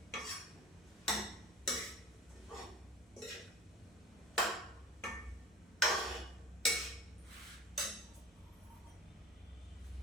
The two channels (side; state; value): both; normal; correlation 0.37